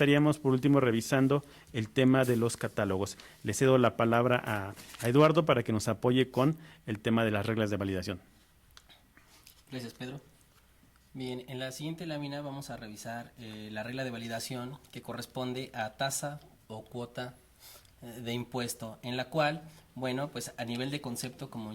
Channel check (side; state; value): both; identical; correlation 1.00